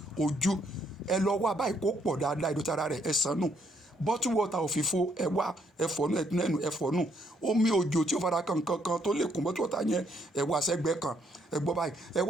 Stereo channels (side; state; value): both; normal; correlation 0.71